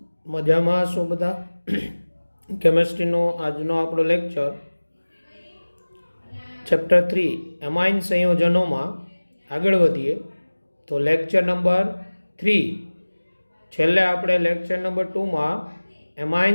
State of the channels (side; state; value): both; inverted; correlation -1.00